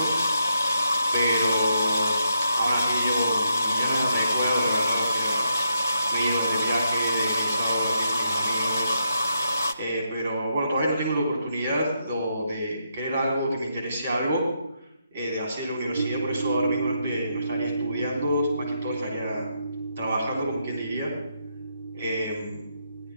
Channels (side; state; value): both; inverted; correlation -0.80